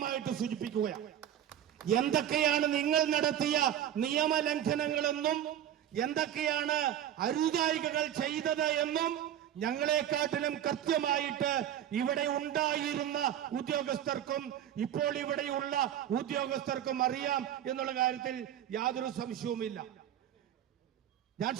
സൂചിപ്പിക്കുകയാണ്. എന്തൊക്കെയാണ് നിങ്ങൾ നടത്തിയ നിയമലംഘനങ്ങളെന്നും എന്തൊക്കെയാണ് അരുതായികകൾ ചെയ്തത് എന്നും ഞങ്ങളെക്കാട്ടിലും കൃത്യമായിട്ട് ഇവിടെ ഉണ്ടായിരുന്ന ഉദ്യോഗസ്ഥർക്കും ഇപ്പോൾ ഇവിടെയുള്ള ഉദ്യോഗസ്ഥർക്കും അറിയാം എന്നുള്ള കാര്യത്തിൽ യാതൊരു സംശയവുമില്ല. ഞാൻ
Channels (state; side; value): quieter; left; 10.8 dB